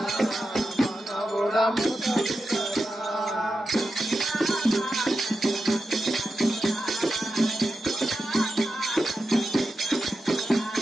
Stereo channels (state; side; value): normal; both; correlation 0.90